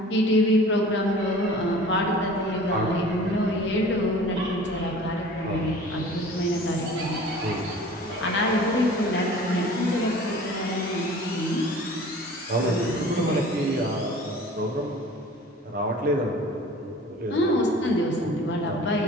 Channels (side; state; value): both; normal; correlation 0.45